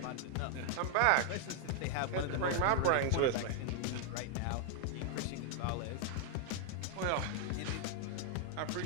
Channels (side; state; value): both; different; correlation 0.00